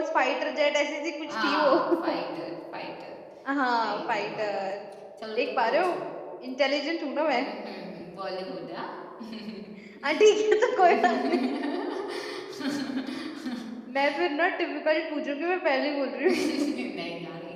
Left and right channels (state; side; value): identical; both; correlation 1.00